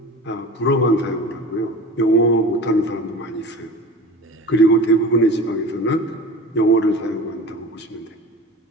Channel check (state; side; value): normal; both; correlation 0.36